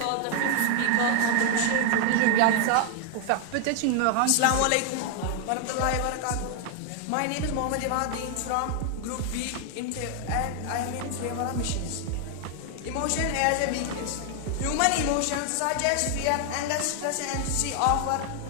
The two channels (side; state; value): both; different; correlation 0.00